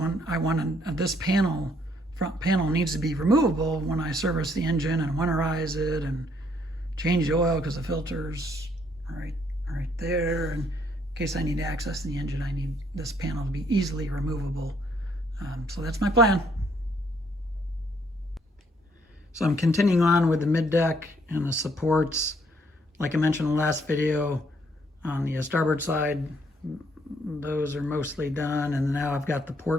I want this panel, front panel needs to be removable when I service the engine and winterize it and change the oil, because the filter's right there. And in case I need to access the engine, I need this panel to be easily removable. So that's my plan. So I'm continuing on with the mid deck and the supports. Like I mentioned in the last video, on the starboard side, those are mostly done, and now I've got the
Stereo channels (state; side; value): normal; both; correlation 0.68